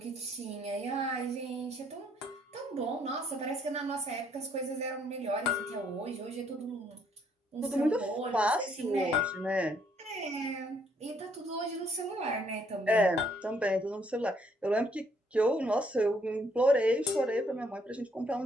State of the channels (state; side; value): normal; both; correlation 0.68